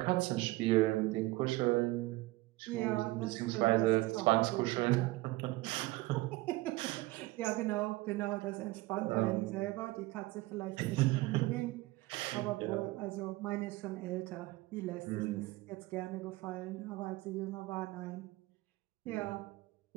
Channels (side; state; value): left; quieter; 19.8 dB